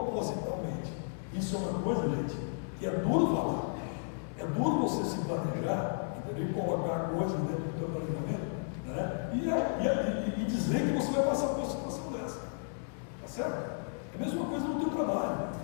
Isso é uma coisa, gente, que é duro falar, é duro você se planejar, entendeu? E colocar coisas dentro do teu planejamento, né? E dizer que você vai passar por uma situação dessa, tá certo? É a mesma coisa no teu trabalho, né?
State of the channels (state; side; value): silent; right; digital silence